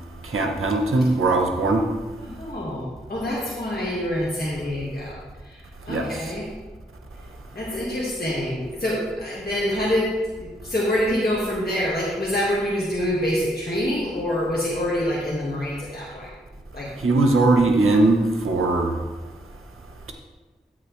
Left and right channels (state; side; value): normal; both; correlation 0.69